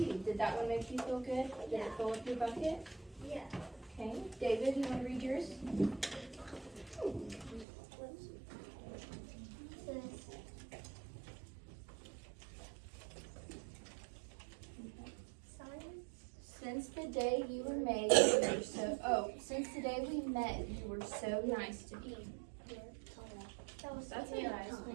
Did that one make you feel good? Did it fill up your bucket? Yeah. Okay. David, you want to read yours? Since the day you were made, you were since the day we met, you were so nice to me. That's a nice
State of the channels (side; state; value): left; drops out; at 7.7 s